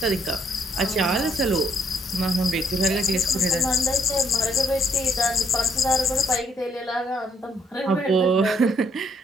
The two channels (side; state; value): both; normal; correlation 0.70